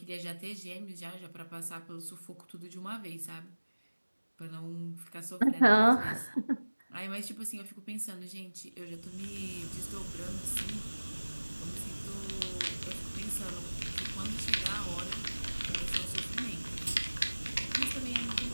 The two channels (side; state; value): both; inverted; correlation -1.00